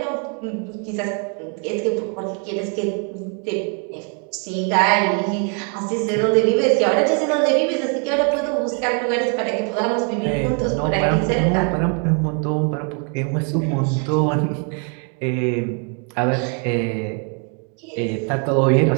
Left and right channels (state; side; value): quieter; left; 39.5 dB